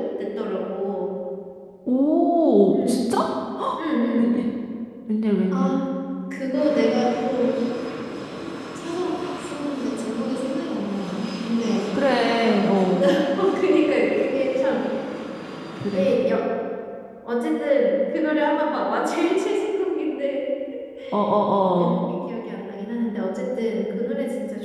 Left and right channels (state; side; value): identical; both; correlation 1.00